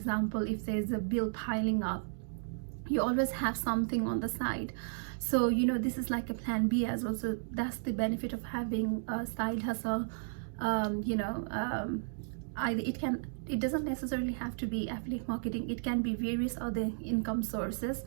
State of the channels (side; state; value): left; silent; digital silence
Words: if there's a bill piling up, you always have something on the side. So this is like a plan B as well. So that's the benefit of having a side hustle. It doesn't necessarily have to be affiliate marketing. It can be various other income sources.